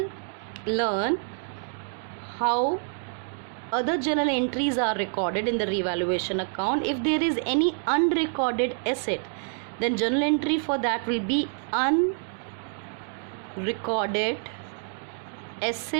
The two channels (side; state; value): left; silent; 60 dB below the other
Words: learn how other journal entries are recorded in the revaluation account. If there is any unrecorded asset, then journal entry for that will be unrecorded